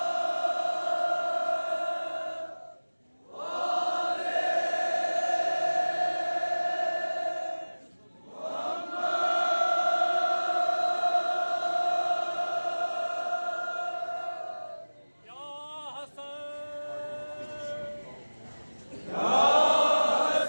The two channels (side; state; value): both; inverted; correlation -1.00